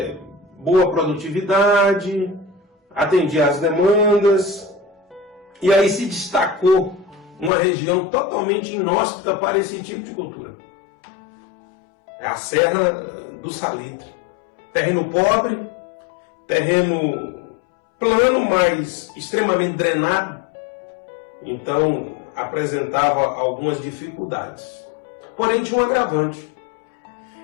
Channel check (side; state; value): right; drops out; at 7.5 s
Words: boa produtividade, atendia às demandas. E aí se destacou uma região totalmente inóspita para esse tipo de cultura. É a Serra do Salitre. Terreno pobre, terreno plano, mas extremamente drenado. Então apresentava algumas dificuldades. Porém tinha um agravante.